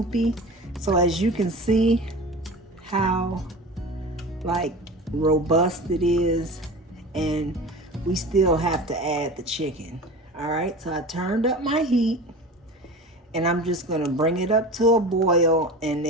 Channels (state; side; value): normal; both; correlation 0.33